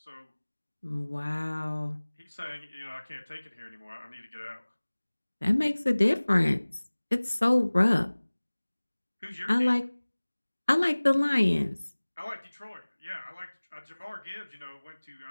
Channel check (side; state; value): both; inverted; correlation -1.00